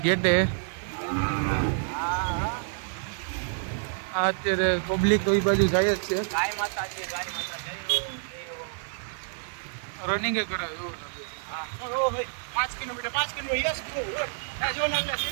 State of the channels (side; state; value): left; silent; 59 dB below the other